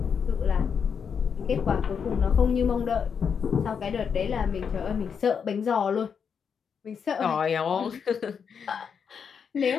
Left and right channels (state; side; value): quieter; right; 6.7 dB